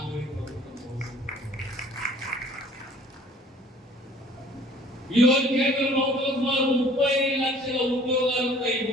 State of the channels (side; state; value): both; normal; correlation 0.53